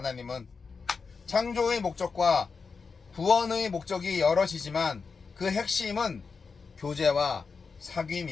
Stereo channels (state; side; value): quieter; right; 5.0 dB